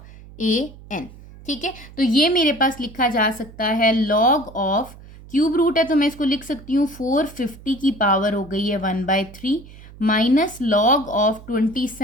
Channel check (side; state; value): right; noise; hum, 19 dB below the sound